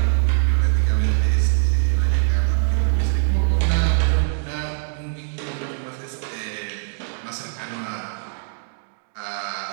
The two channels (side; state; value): left; silent; digital silence